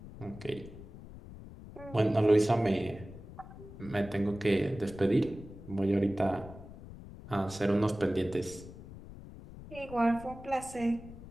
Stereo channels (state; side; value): noise; left; rumble, 15 dB below the sound